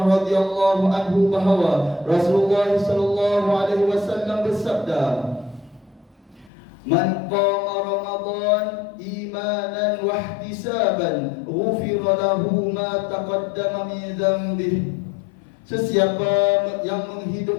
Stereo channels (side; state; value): right; drops out; at 6.5 s